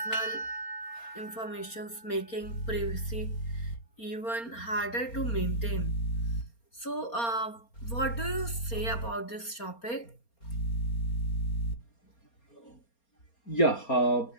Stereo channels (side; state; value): right; late; 4.3 ms